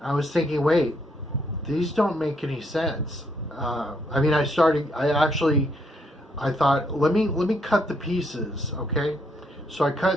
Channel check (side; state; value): both; normal; correlation 0.73